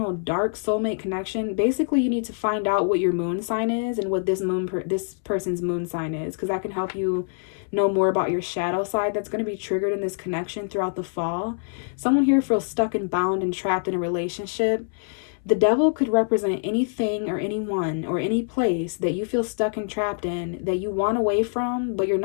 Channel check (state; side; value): silent; right; 62 dB below the other